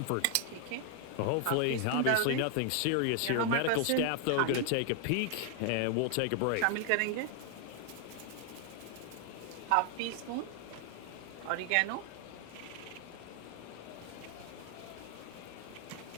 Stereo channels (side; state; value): both; different; correlation 0.00